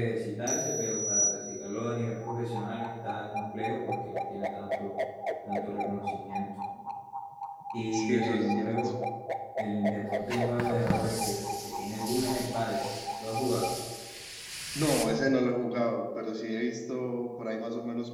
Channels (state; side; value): identical; both; correlation 1.00